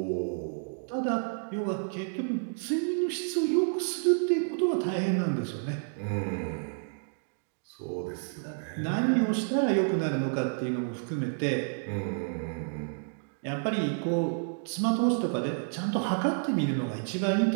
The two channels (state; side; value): silent; left; digital silence